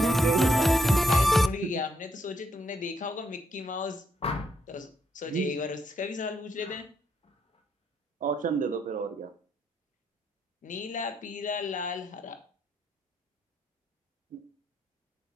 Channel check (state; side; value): normal; both; correlation 0.76